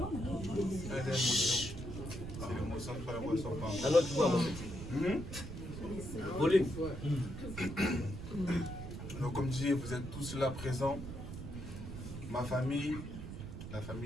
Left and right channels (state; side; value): noise; right; rumble, 8 dB below the sound